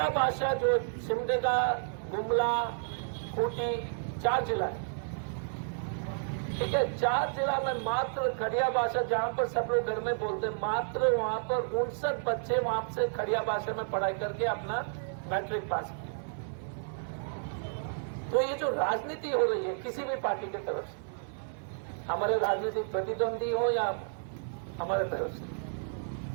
भाषा जो सिमडेगा गुमला खूंटी 4 जिला है, ठीक है। 4 जिला में मात्र खड़िया भाषा जहां पर सब लोग घर में बोलते हैं मात्र वहां पर 59 बच्चे वहां से खड़िया भाषा में पढ़ाई करके अपना मैट्रिक पास किया। तो ये जो राजनीति हो रही है किसी भी पार्टी की तरफ से हमारे राजनीतिक प्रतिद्वंदी हो या हमारे तरफ से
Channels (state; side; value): silent; left; 57 dB below the other